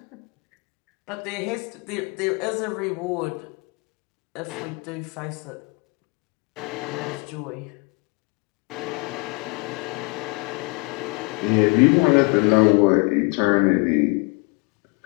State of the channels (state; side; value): quieter; right; 31.5 dB